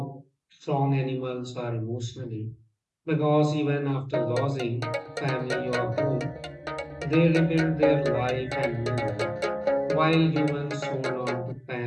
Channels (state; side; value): identical; both; correlation 1.00